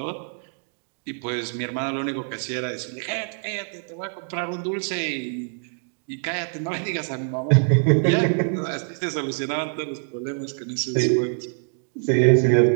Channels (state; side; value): silent; left; 60 dB below the other